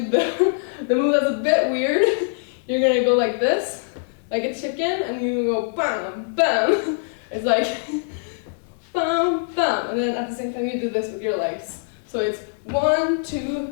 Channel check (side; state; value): right; silent; digital silence